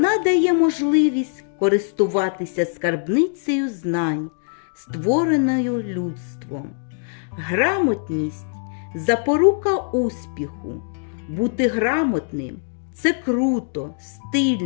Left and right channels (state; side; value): silent; right; digital silence